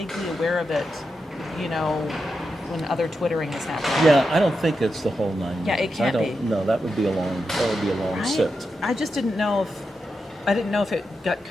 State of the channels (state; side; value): normal; both; correlation 0.87